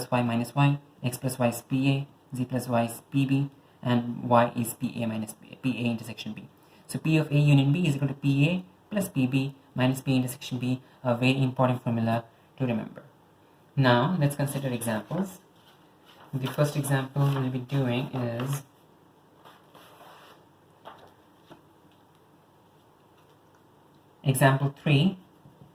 Y minus Y, X plus Y is PA, Z plus Y is PB, and Y is PA minus PA intersection B. So P of A union B is equal to PA plus PB minus P intersection B, a very important formula to remember. Now let's consider examples. The first example we'll be doing is example 3,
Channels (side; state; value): both; identical; correlation 1.00